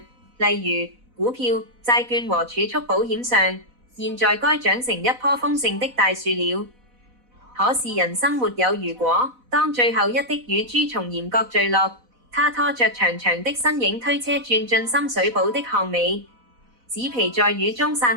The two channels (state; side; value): late; left; 4.0 ms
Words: 例如股票、債券和儲蓄保險上，現在該長成一棵豐盛的大樹了。可是人生沒有如果，當最後一滴乳珠從鹽角墜落，他拖着長長的身影推車轉進深水埗的巷尾，紙皮在雨中